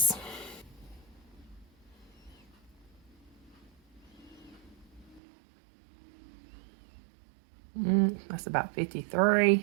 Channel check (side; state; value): left; drops out; at 5.2 s